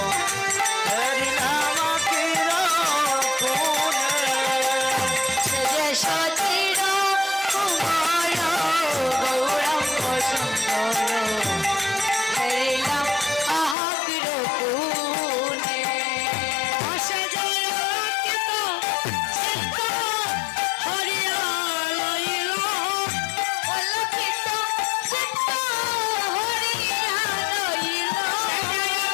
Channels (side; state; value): right; drops out; at 13.8 s